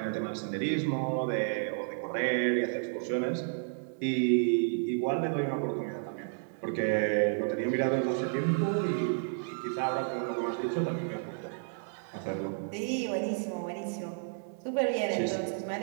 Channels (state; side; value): silent; left; digital silence